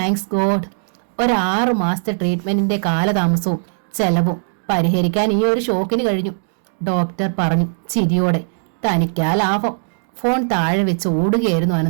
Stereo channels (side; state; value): left; silent; digital silence